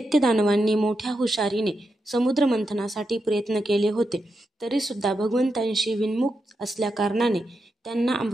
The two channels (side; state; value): both; normal; correlation 0.86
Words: दानवांनी मोठ्या हुशारीने समुद्र मंथनासाठी प्रयत्न केले होते तरी सुद्धा भगवंतांशी विन्मुख असल्या कारणाने त्यांना